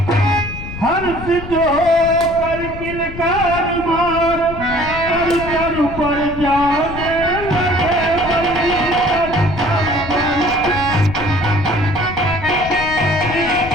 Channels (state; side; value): noise; left; rumble, 10 dB below the sound